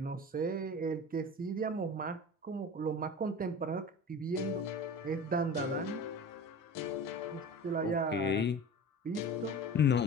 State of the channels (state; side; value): normal; both; correlation 0.35